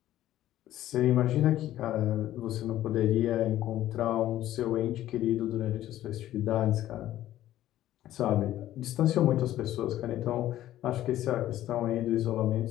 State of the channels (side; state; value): right; quieter; 13.5 dB